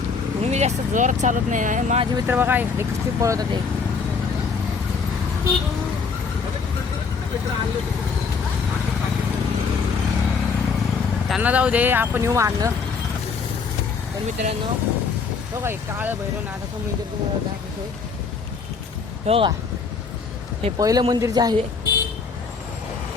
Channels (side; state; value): right; quieter; 5.2 dB